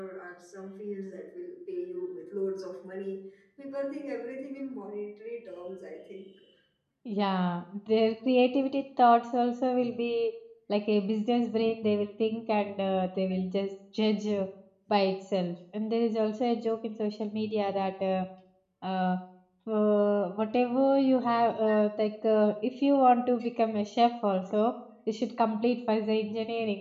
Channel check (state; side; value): identical; both; correlation 1.00